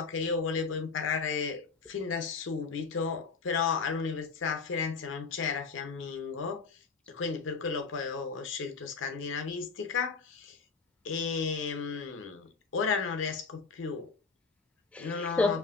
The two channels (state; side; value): quieter; right; 4.9 dB